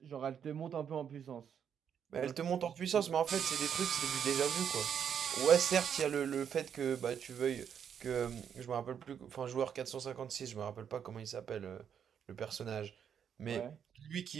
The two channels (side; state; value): left; quieter; 8.1 dB